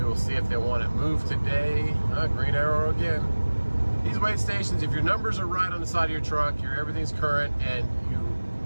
will see if they want it moved today. Green arrow again. These weight stations, if your numbers are right on the side of your truck, everything's current, and you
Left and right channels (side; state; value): both; inverted; correlation -1.00